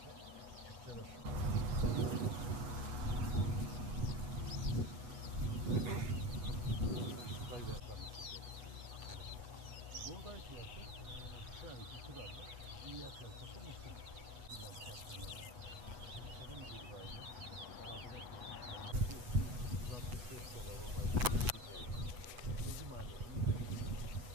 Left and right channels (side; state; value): left; late; 8.2 ms